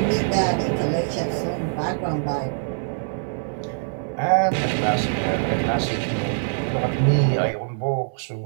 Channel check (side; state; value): left; silent; digital silence